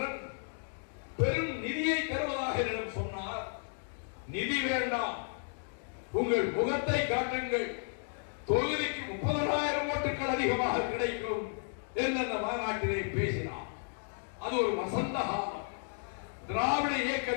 பெரும் நிதியை தருவதாக என்னிடம் சொன்னார். நிதி வேண்டாம், உங்கள் முகத்தை காட்டுங்கள், தொகுதிக்கு 30,000 ஓட்டுகள் அதிகமாக கிடைக்கும் என்று அந்த மாநாட்டிலே பேசினார். அது ஒரு வசந்த காலம், திராவிட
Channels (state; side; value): silent; right; 56 dB below the other